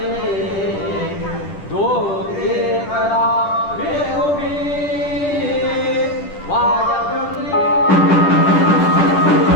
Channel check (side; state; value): right; late; 10 ms